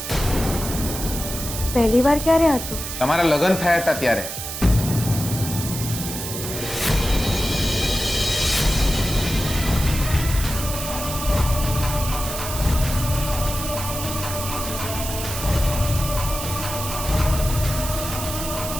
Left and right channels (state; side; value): noise; right; hiss, 6 dB below the sound